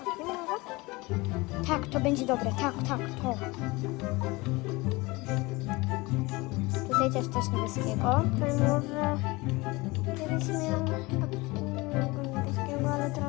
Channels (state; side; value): quieter; right; 23.2 dB